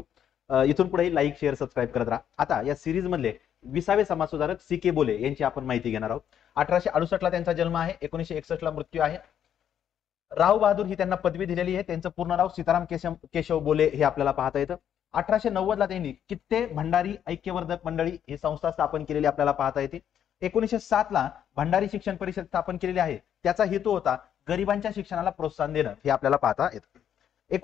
इथून पुढे लाईक, शेअर, सबस्क्राईब करत राहा. आता या सिरीज मधले 20वे समाज सुधारक सी.के. बोले यांची आपण माहिती घेणार आहोत. 1868 ला त्यांचा जन्म आहे, 1961 ला मृत्यू आहे. राव बहादूर ही त्यांना पदवी दिलेली आहे. त्यांचं पूर्ण नाव सीताराम केशव बोले हे आपल्याला पाहता येतं. 1890 ला त्यांनी कित्ते भंडारी ऐक्यवर्धक मंडळी ही संस्था स्थापन केलेली आपल्याला पाहता येते. 1907 ला भंडारी शिक्षण परिषद स्थापन केलेली आहे. त्याचा हेतू होता गरिबांच्या शिक्षणाला प्रोत्साहन देणं, हे आपल्याला पाहता येतं.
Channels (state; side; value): quieter; right; 9.5 dB